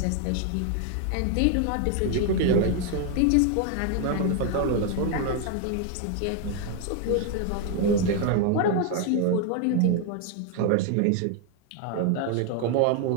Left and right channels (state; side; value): different; both; correlation 0.01